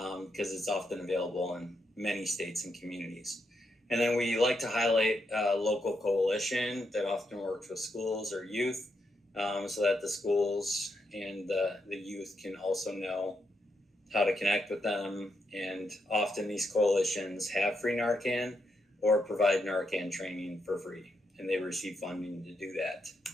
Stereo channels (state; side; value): normal; both; correlation 0.81